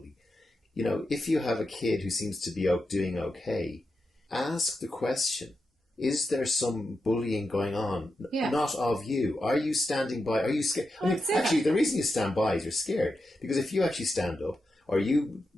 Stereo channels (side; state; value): both; normal; correlation 0.88